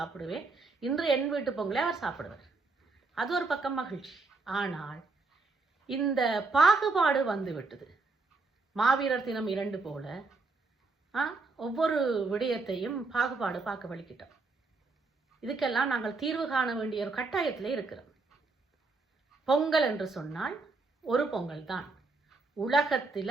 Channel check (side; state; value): left; quieter; 3.8 dB